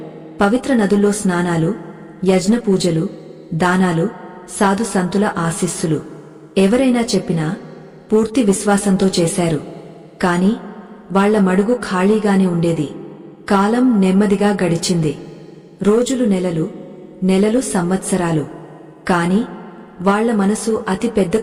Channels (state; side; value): identical; both; correlation 1.00